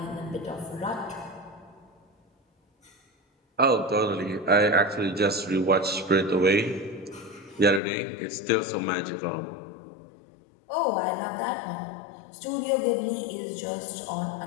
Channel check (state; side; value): drops out; right; at 7.8 s